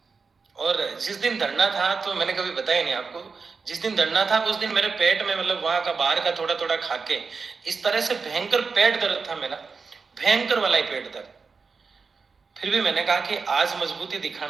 और जिस दिन धरना था, तो मैंने कभी बताया नहीं आपको, जिस दिन धरना था उस दिन मेरे पेट में, मतलब वहां का बाहर का थोड़ा थोड़ा खाके इस तरह से भयंकर पेट दर्द था मेरा, भयंकर वाला ही पेट दर्द। फिर भी मैंने कहा कि आज मजबूती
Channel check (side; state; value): left; quieter; 4.8 dB